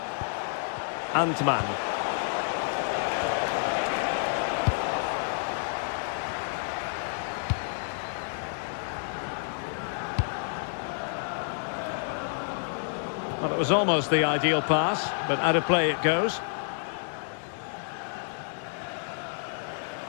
Antman. Well, it was almost the ideal pass, but out of play it goes.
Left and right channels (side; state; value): right; silent; 58 dB below the other